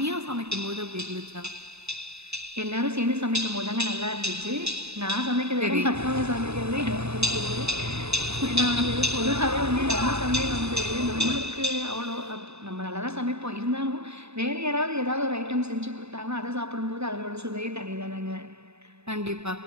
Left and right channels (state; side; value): late; left; 0.80 ms